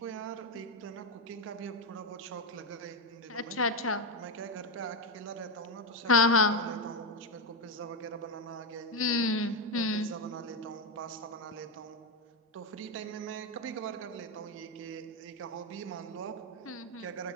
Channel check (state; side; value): normal; both; correlation 0.08